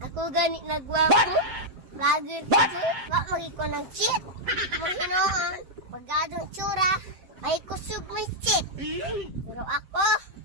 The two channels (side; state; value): left; late; 7.6 ms